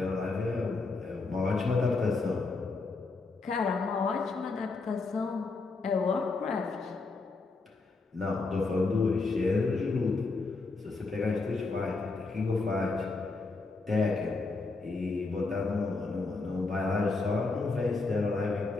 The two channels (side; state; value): right; quieter; 3.8 dB